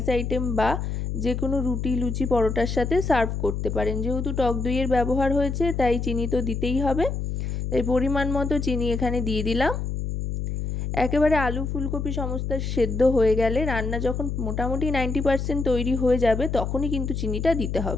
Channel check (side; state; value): left; noise; hum, 3 dB below the sound